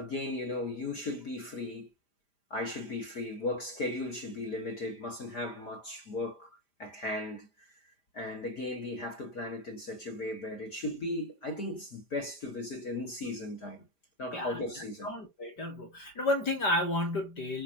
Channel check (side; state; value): right; late; 5.0 ms